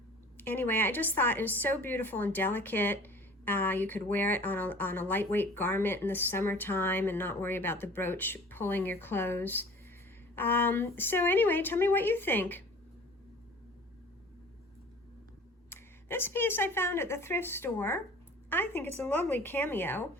Anyway, I just thought it was so beautiful and delicate. You could wear it on a lightweight garment in the summertime and not worry about the brooch pulling your clothes. So anyway, tell me what you think. This piece I found at the thrift store. I think it's a lovely cameo.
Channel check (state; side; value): normal; both; correlation 0.45